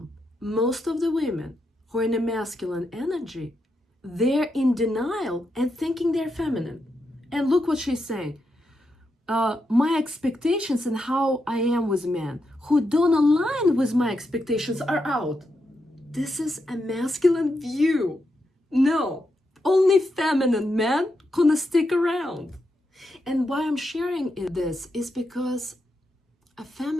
Most of the women who are in a masculine energy, they're in denial and thinking they're feminine. And look what she's saying. My expectations and how I am with men who don't align with my expectations are out. This is a masculine view. No, only feminine men gonna stick around. And why I'm sharing this is because a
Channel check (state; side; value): normal; both; correlation 0.84